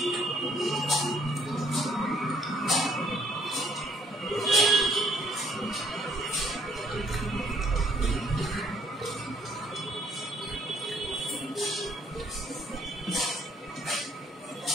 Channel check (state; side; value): normal; both; correlation 0.65